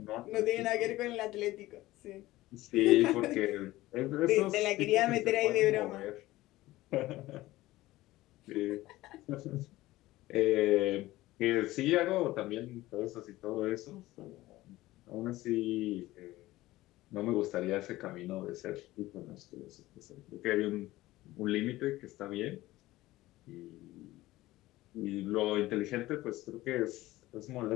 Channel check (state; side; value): quieter; right; 17.4 dB